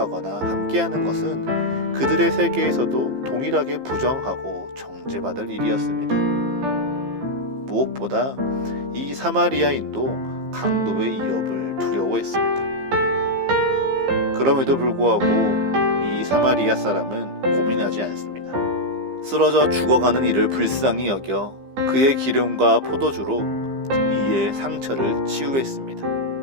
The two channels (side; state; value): left; late; 15 ms